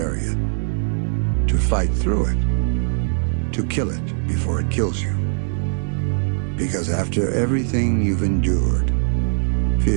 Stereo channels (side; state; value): left; silent; digital silence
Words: it, to fight through it, to kill it before it kills you. Because after everything you've endured,